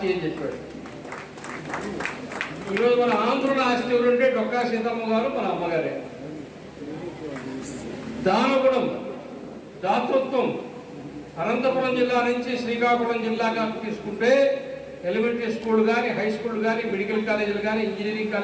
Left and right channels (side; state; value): both; identical; correlation 1.00